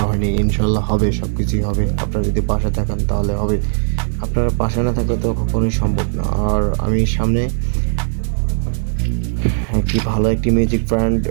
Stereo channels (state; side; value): silent; left; digital silence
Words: হয়নি। ইনশাল্লাহ হবে, সব কিছুই হবে। আপনারা যদি পাশে থাকেন তাহলে হবে, আপনারা পাশে না থাকলে তো কখনোই সম্ভব না। আর আমি সামনে একটি ভালো একটি মিউজিক ব্র্যান্ড